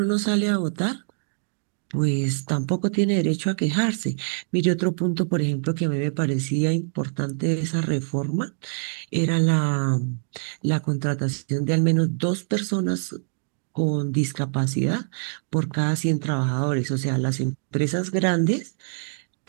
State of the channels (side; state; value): left; silent; digital silence